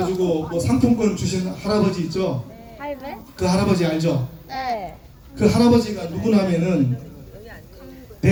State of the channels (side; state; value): both; identical; correlation 1.00